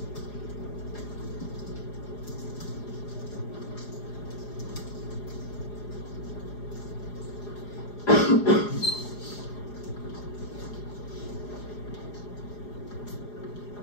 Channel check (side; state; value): right; late; 4.9 ms